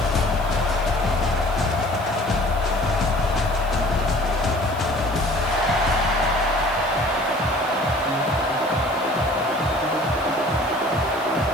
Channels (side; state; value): left; noise; hiss, 21 dB below the sound